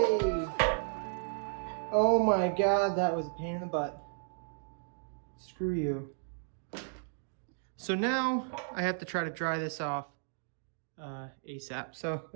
Oh my god, that was a pain in the butt. Screw you. So now I have to try to dry this off ASAP. So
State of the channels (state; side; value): silent; left; digital silence